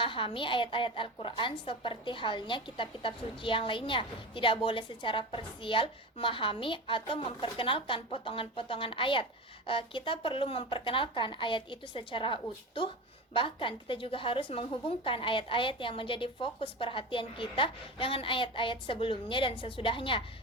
ayat-ayat Al-Quran seperti halnya kitab-kitab suci yang lainnya. Tidak boleh secara parsial memahami atau memperkenalkan potongan-potongan ayat. Kita perlu memperkenalkan ayat itu secara utuh. Bahkan kita juga harus menghubungkan ayat-ayat yang menjadi fokus perhatian kita dengan ayat-ayat sebelumnya dan sesudahnya.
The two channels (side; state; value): both; normal; correlation 0.27